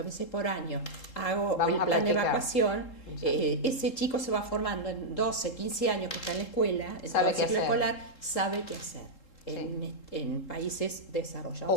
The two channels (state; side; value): late; right; 3.7 ms